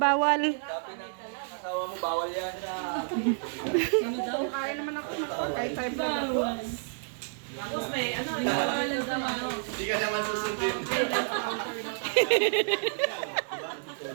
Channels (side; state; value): left; silent; digital silence